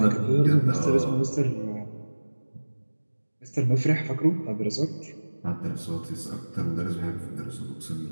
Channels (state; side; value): inverted; both; correlation -1.00